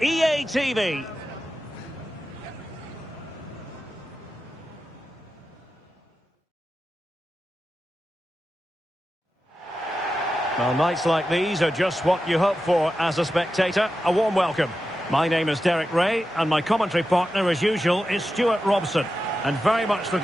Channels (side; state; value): both; normal; correlation 0.91